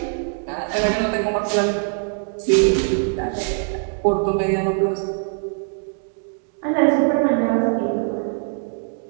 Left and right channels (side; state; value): left; silent; 55 dB below the other